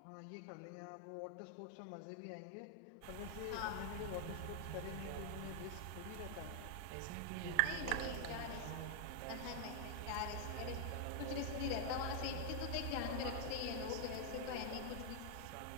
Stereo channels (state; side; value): different; both; correlation 0.00